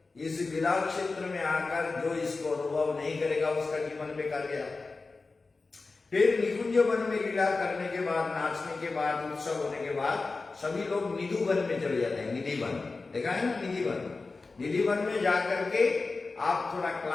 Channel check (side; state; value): right; quieter; 3.8 dB